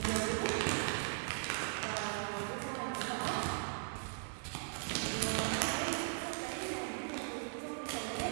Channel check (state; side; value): silent; left; digital silence